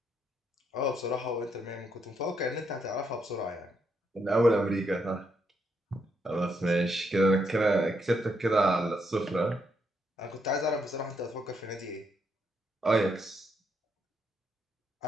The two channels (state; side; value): normal; both; correlation 0.77